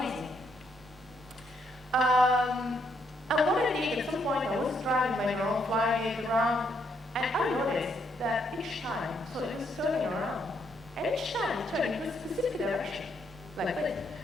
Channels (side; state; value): both; normal; correlation 0.74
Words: easy. And one day, at some point, I was driving my drone, flying it around, and I noticed that each time, so it was turning around, and each time it turned in a specific direction, like this,